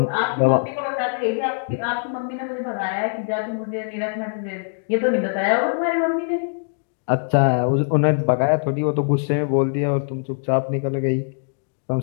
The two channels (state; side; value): silent; right; digital silence